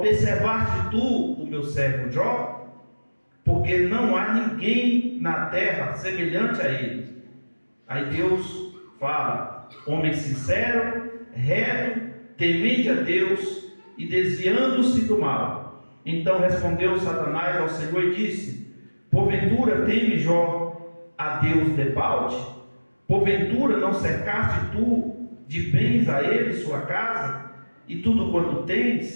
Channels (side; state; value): both; inverted; correlation -1.00